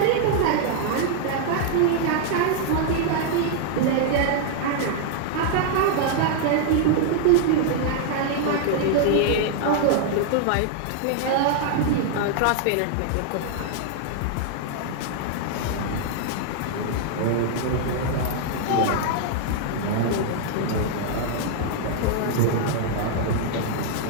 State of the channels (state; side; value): different; both; correlation 0.00